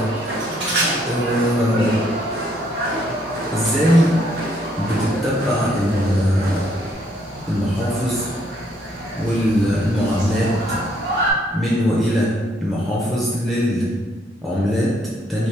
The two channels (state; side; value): normal; both; correlation 0.69